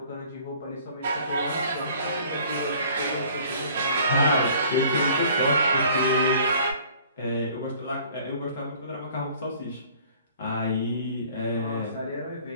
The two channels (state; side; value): inverted; both; correlation -0.53